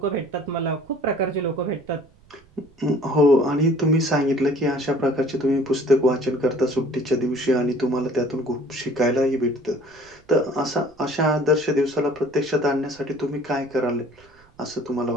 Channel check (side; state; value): right; noise; rumble, 29 dB below the sound